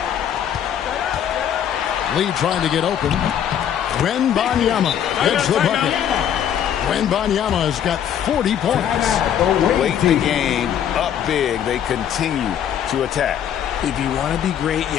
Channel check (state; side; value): quieter; right; 9.5 dB